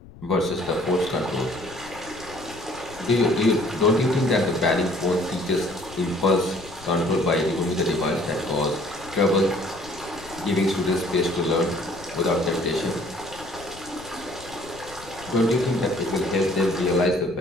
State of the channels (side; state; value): left; noise; rumble, 19 dB below the sound